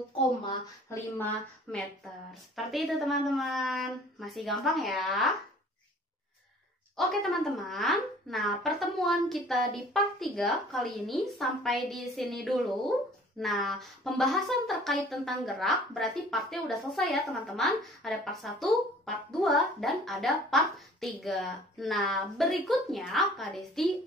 meter. Seperti itu teman-teman. Masih gampang ya? Oke teman-teman. Nah, pertemuan kita di part 3 kali ini sampai di sini dulu. Nah, pembahasan terkait tentang gerak berarti partnya udah selesai ya teman-teman. Ada part 1, part 2, dan ada part 3. Nah, berikutnya Kak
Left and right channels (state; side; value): normal; both; correlation 0.51